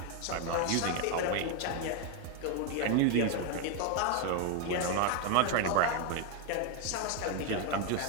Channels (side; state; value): both; different; correlation 0.02